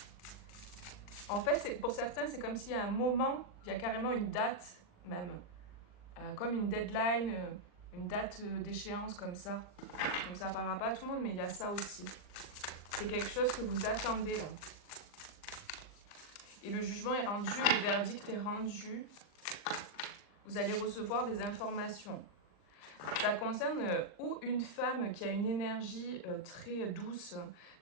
En fait, pour certains, c'est comme s'il y a un moment, il y a carrément une date même. Comme une deadline, une date d'échéance comme ça. Donc ça ne parlera pas à tout le monde, mais il y a ça aussi. C'est quelque chose que vous attendez là. Et le jugement est rendu, le verdict est rendu. Vous allez recevoir des informations. Ça concerne ou une femme qui a une énergie très douce,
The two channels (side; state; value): right; late; 39 ms